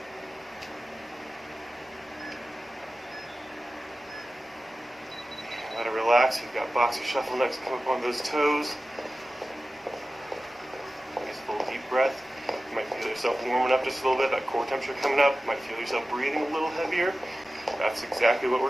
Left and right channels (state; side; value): normal; both; correlation 0.95